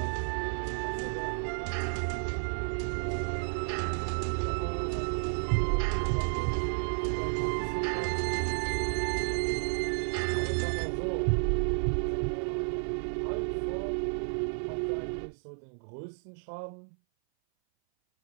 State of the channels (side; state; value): left; silent; 57 dB below the other